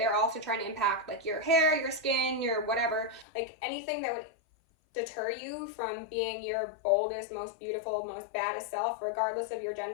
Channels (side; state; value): right; drops out; at 3.2 s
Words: also trying to impact like your hair, your skin, your whatever, like anything that would deter you from being your boldest, most beautiful, most baddest self, regardless of your